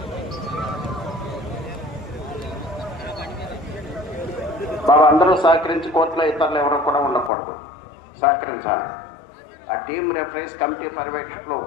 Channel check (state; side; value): drops out; right; at 7.3 s